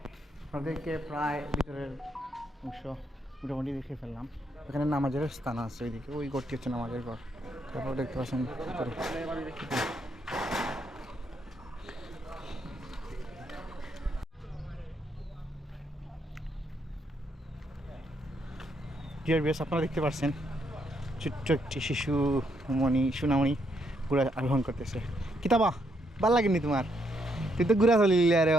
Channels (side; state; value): both; normal; correlation 0.75